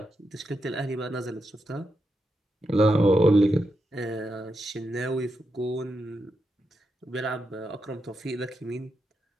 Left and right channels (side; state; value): both; normal; correlation 0.85